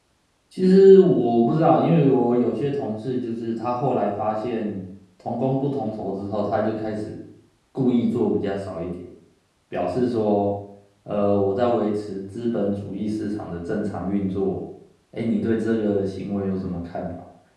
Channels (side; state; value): both; identical; correlation 1.00